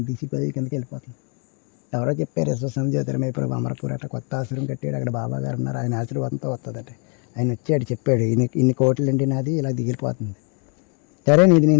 తీసిపోయి కిందకి వెళ్ళిపోతుంది. ఎవరో చెప్పారు యశ్వసం జ్యోతిర్మయపురం అమరపూర్ అట్లా కొత్త ఆశ్రమం కట్టాడు, అక్కడ బాబా గారు ఉన్నారు, ఆయన ఆశీర్వాదంతో వస్తుందట. ఆయన వచ్చాడు చెప్పాడు, ఇన్ని కోట్లు అండి నాది ఇలా దిగిలిపోతుంది. సరే నీది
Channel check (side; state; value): right; quieter; 37.0 dB